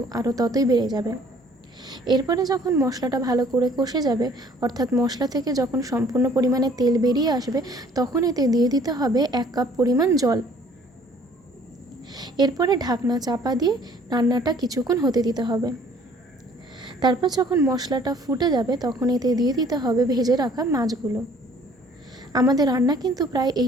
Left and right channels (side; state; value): both; normal; correlation 0.57